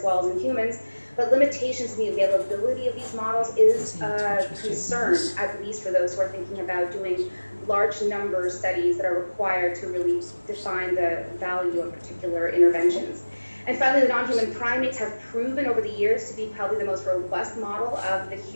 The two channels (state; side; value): inverted; both; correlation -1.00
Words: well as in humans. But limitations in the availability of these models is a concern, at least for those who are thinking about doing large number studies that are required to really define the value of particular interventions. And finally, the non-human primates have proven over the years to be probably the most robust model of the